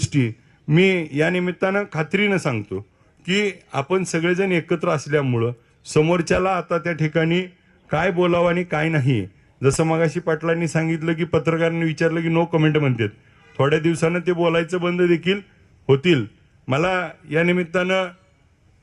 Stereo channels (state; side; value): identical; both; correlation 1.00